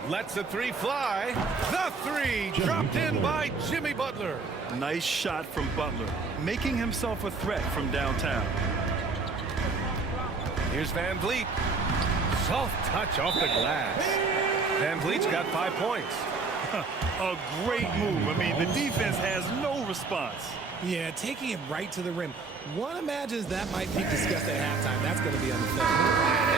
Lets the 3 fly. The 3 dropped in by Jimmy Butler. Nice shot from Butler, making himself a threat from downtown. Here's Van Vliet. Soft touch off the glass. Van Vliet's got 5 points. A great move. I mean, the defense has no response. Yeah, taking it right to the rim. One imagines that might be discussed at halftime. That's going to be on the film.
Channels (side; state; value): left; quieter; 4.3 dB